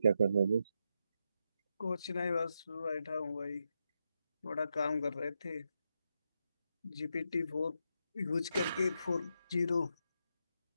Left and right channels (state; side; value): inverted; both; correlation -0.83